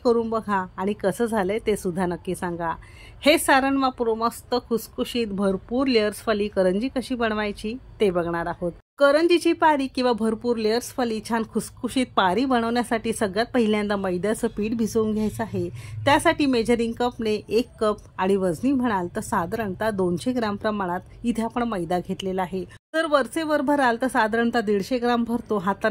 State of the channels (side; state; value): both; identical; correlation 1.00